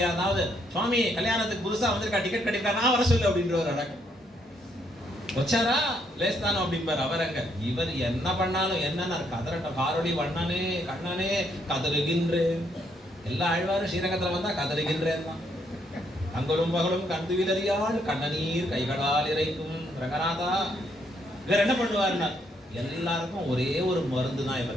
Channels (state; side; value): normal; both; correlation 0.73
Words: சுவாமி கல்யாணத்துக்கு புதுசாக வந்திருக்கா, டிக்கெட் கிடைக்கா, நான் வர சொல்லு அப்படின்ற ஒரு அடக்கம் வச்சாரா லேஸ்தானோ அப்படிம்பார். அவர் அங்க இவர் என்ன பண்ணாலும் என்னன்னா கதறட்டம், காரொளி வண்ணனே கண்ணனே கதறுகின்றேன். எல்லா ஆழ்வாரும் ஸ்ரீரங்கத்தில் வந்தா கதறுகின்றேன் தான். அங்கலும் பகலும் கண்டு விலறியால் கண்ணநீர் கைகளால் இறைக்கும் ரங்கநாதா. இவர் என்ன பண்ணுவார்னா, எல்லாருக்கும் ஒரே ஒரு மருந்து தான்